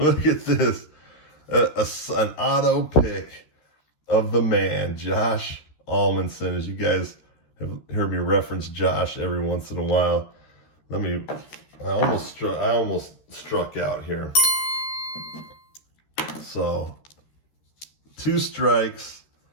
at this. An auto pick of the man, Josh Almanson. As you guys have heard me reference Josh every once in a while. I almost struck out here. So 2 strikes.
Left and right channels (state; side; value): late; right; 13 ms